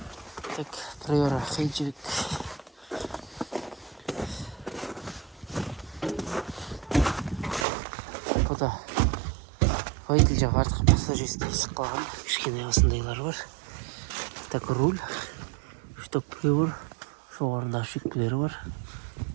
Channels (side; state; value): left; drops out; at 7.7 s